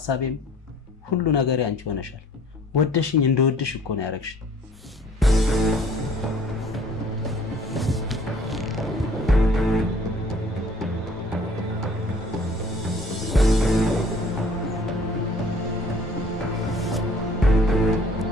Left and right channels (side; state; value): both; normal; correlation 0.54